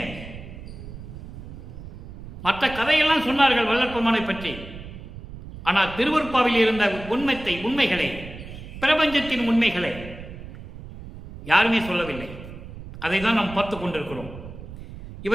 மற்ற கதையெல்லாம் சொன்னார்கள் வல்லற்பமானை பற்றி. ஆனால் திருவருட்பாவில் இருந்த உண்மைகளை, பிரபஞ்சத்தின் உண்மைகளை யாருமே சொல்லவில்லை. அதை தான் நாம் பார்த்து கொண்டிருக்கிறோம்.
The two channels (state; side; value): noise; right; rumble, 13 dB below the sound